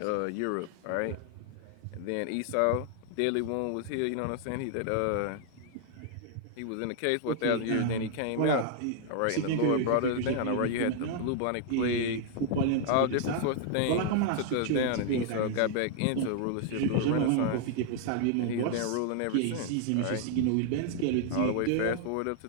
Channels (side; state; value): both; different; correlation 0.00